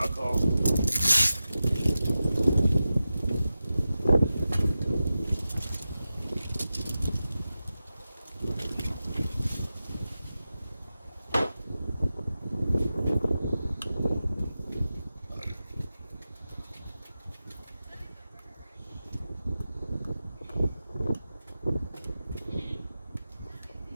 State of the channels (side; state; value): both; inverted; correlation -0.93